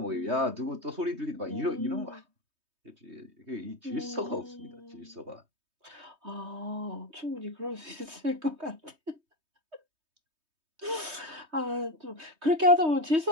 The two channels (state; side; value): late; left; 3.2 ms